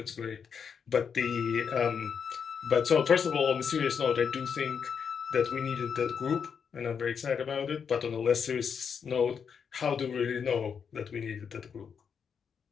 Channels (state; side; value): quieter; right; 6.7 dB